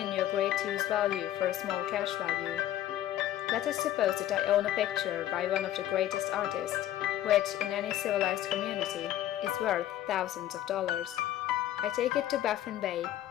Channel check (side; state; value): right; quieter; 12.7 dB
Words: you a great use value for a small cash value. Let us suppose that I own a picture by one of the greatest artists, which, in any civilized community, is worth thousands of dollars. I take it to Baffin Bay,